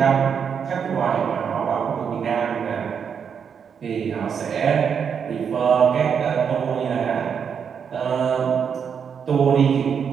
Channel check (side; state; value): left; quieter; 7.1 dB